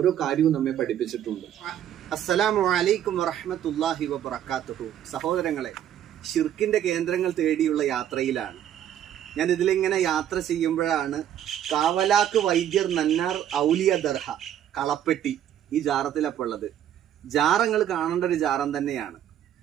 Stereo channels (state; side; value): quieter; left; 10.7 dB